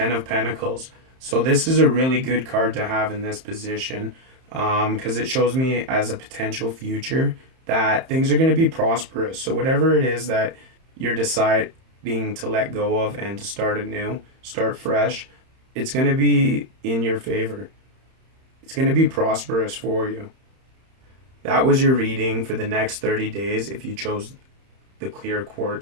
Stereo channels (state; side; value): late; left; 31 ms